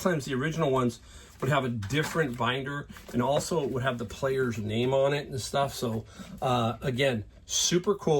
the original ones would have a different binder, and also it would have the player's name on it and stuff. So again, super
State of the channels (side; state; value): both; identical; correlation 1.00